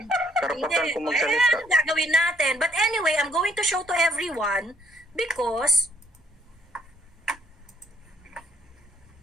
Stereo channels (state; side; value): normal; both; correlation 0.66